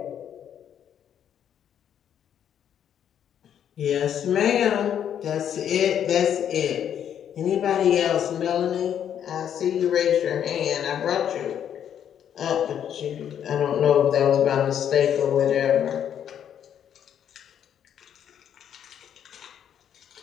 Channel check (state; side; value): quieter; right; 9.4 dB